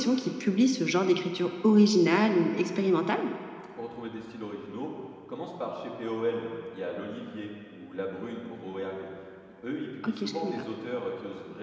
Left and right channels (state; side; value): identical; both; correlation 1.00